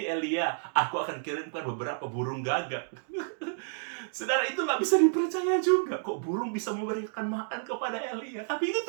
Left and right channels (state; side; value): silent; left; digital silence